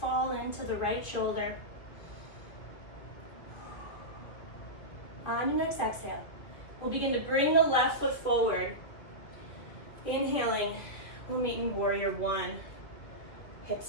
into the right shoulder. On your next exhale, we'll begin to bring the left foot forward. Inhaling, we'll meet in warrior one.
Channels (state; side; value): late; right; 2.3 ms